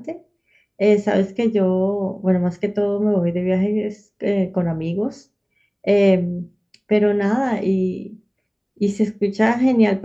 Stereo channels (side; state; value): both; identical; correlation 1.00